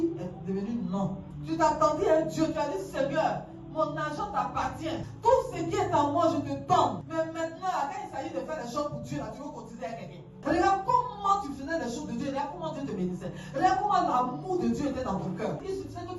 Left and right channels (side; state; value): both; identical; correlation 1.00